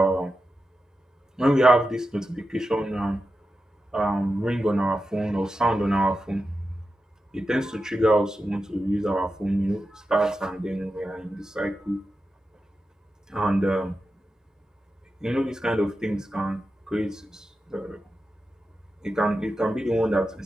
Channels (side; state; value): both; normal; correlation 0.90